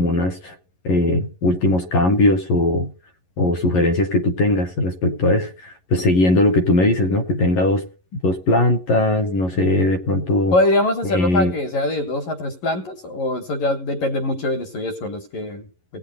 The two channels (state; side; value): late; right; 11 ms